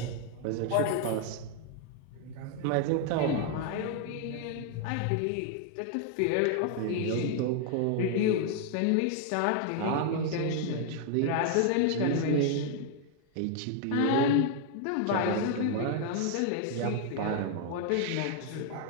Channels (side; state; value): both; different; correlation 0.00